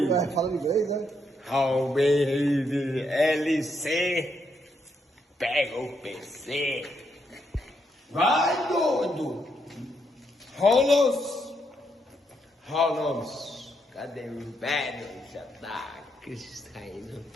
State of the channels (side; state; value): both; normal; correlation 0.78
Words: Fala inglês, né? LC. Pega o PC. Vai, doido. Rolos. Cadê o velho? Já tá caindo